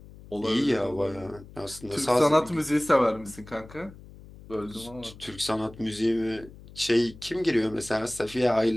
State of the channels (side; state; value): left; noise; hum, 19 dB below the sound